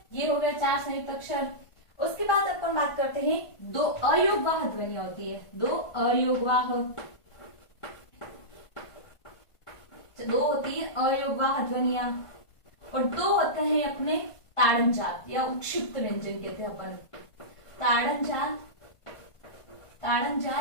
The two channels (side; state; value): right; late; 1.5 ms